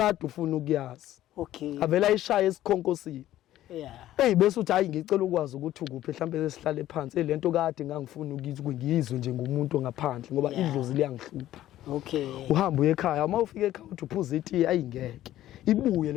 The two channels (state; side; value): quieter; right; 13.6 dB